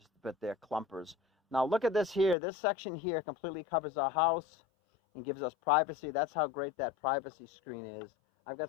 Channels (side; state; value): right; drops out; at 2.4 s